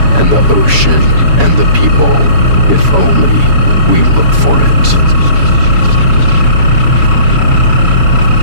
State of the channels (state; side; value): late; left; 7.1 ms